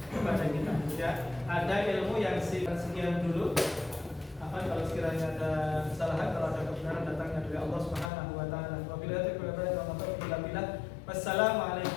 kita. Ya, ada ilmu yang sekian dulu. Apa kalau sekiranya ada kesalahan, kalau ada kebenaran datangnya dari Allah Subhanahu wa taala.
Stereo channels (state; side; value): drops out; right; at 8.1 s